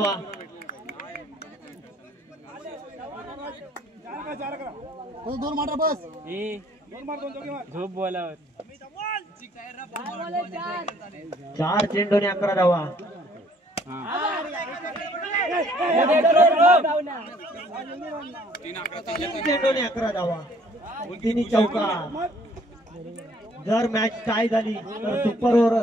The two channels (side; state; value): both; normal; correlation 0.61